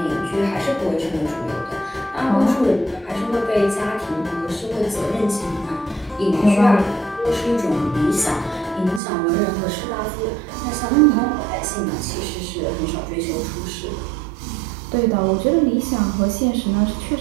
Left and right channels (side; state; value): left; drops out; at 9.0 s